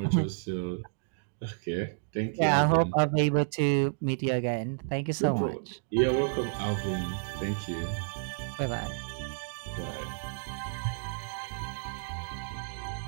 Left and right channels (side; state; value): left; silent; digital silence